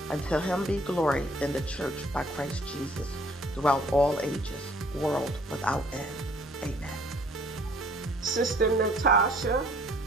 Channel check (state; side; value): normal; both; correlation 0.58